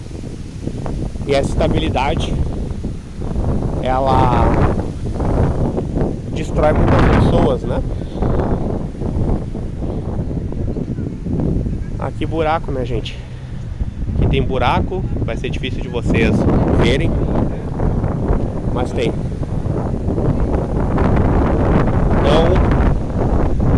E essa estabilidade, ela destrói muitas pessoas, né? Aqui buraco, né, gente? Aqui tem buraco, vai ser difícil de vocês verem, mas tem. Então,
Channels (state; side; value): identical; both; correlation 1.00